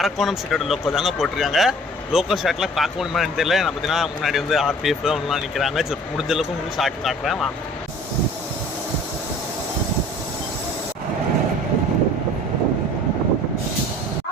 ஷீட்டோட லோக்கோ தாங்க போட்டிருக்காங்க. லோக்கல் ஷாட்லாம் பார்க்க முடியுமான்னு தெரியல. நான் பார்த்தீங்கன்னா முன்னாடி வந்து RPF ஒன்றுலாம் நிற்கிறாங்க. ஸோ முடிஞ்ச அளவுக்கு உங்களுக்கு ஷார்ட் காட்டுறேன் வாங்க.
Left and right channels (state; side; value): normal; both; correlation 0.49